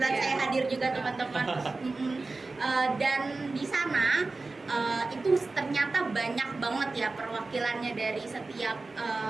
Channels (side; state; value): left; quieter; 3.6 dB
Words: Iya. saya hadir juga teman-teman. Dan di sana itu ternyata banyak banget ya perwakilannya dari setiap